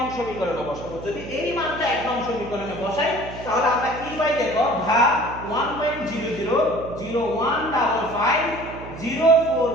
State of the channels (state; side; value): noise; right; hum, 12 dB below the sound